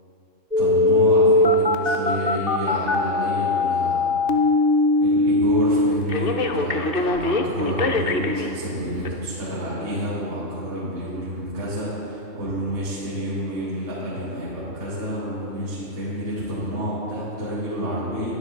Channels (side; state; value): left; late; 2.7 ms